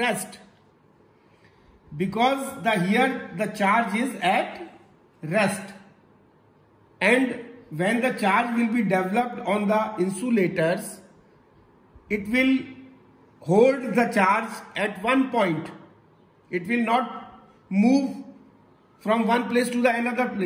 Here the charge is at rest. And when the charge will be developed on the insulators, it will hold the charge at one point. It will not move from one place to the another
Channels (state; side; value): identical; both; correlation 1.00